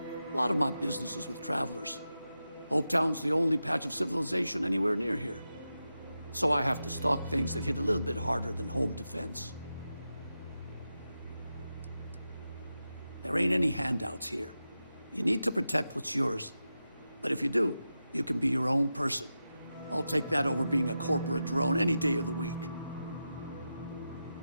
A lot of my business is with travelers. Hopetown's the only patch of civilization anywhere near here. So I have to stock things that hit a little bit harder than home defense. There ain't any handouts here. You need to protect what's yours. But if you do, you can be your own person. I'll take that over being a corporate drone any day of the week.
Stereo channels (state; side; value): inverted; both; correlation -0.91